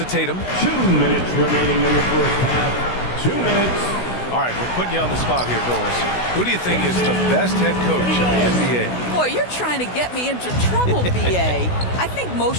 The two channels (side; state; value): right; late; 16 ms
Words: Tatum. 2 minutes remaining in the first half. 2 minutes. All right, we're putting you on the spot here, Doris. Who do you think is the best head coach in the NBA? Boy, you're trying to get me into trouble, BA. I think